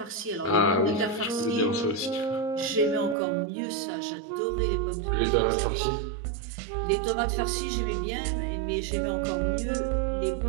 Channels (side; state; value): left; drops out; at 3.2 s